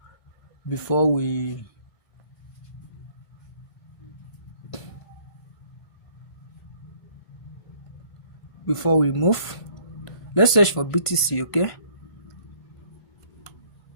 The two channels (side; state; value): right; late; 1.5 ms